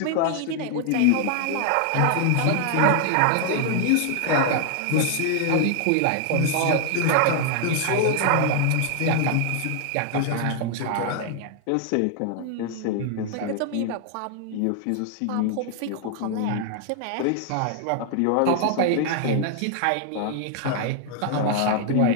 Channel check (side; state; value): both; different; correlation 0.00